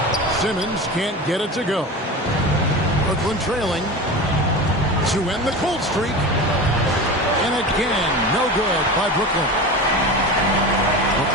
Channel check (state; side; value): normal; both; correlation 0.29